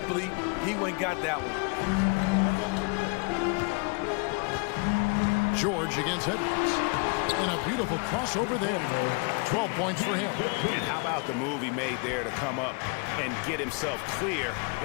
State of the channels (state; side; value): quieter; right; 34.0 dB